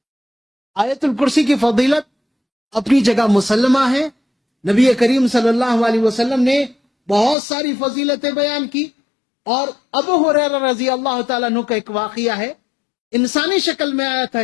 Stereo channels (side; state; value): right; drops out; at 7.4 s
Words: آیت الکرسی کی فضیلت اپنی جگہ مسلمہ ہے، نبی کریم صلی اللہ علیہ وسلم نے بہت ساری فضیلتیں بیان کی، اور ابو ہریرہ رضی اللہ تعالیٰ عنہ کا ایک واقعہ ہے، انسانی شکل میں آیا تھا